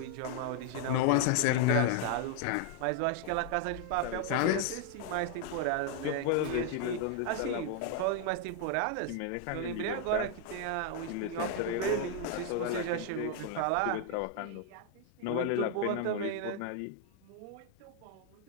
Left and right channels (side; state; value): both; different; correlation 0.00